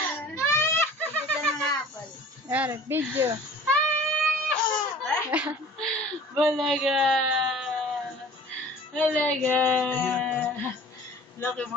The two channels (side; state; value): both; normal; correlation 0.46